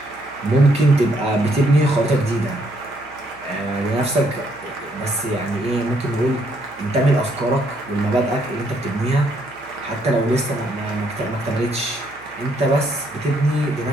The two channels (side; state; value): right; noise; hum, 25 dB below the sound